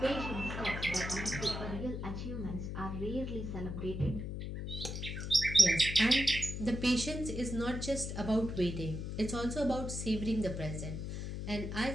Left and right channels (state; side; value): noise; left; hum, 5 dB below the sound